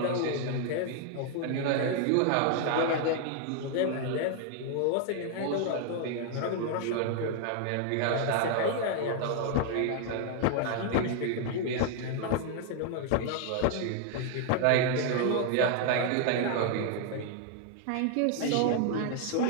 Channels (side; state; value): both; different; correlation 0.00